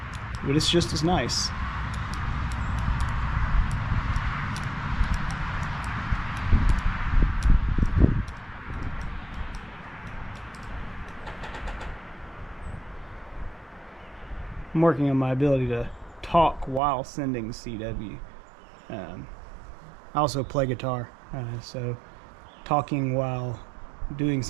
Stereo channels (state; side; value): drops out; left; at 16.8 s